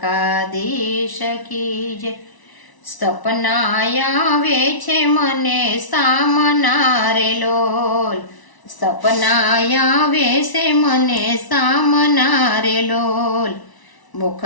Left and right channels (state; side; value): late; right; 1.0 ms